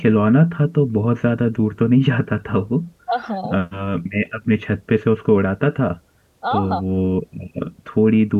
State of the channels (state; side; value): identical; both; correlation 1.00